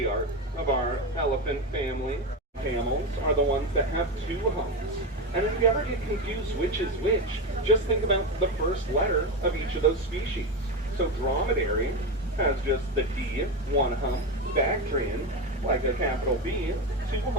of our elephant family. Camels are the ones that have 2 humps. And if you ever get confused which is which, just think about the first letter of each of those species. So dromedary has just the D, 1 hump. Bactrian, like a capital B, 2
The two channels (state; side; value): normal; both; correlation 0.16